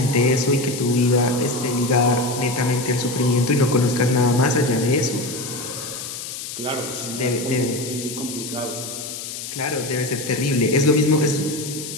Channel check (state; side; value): noise; left; hiss, 8 dB below the sound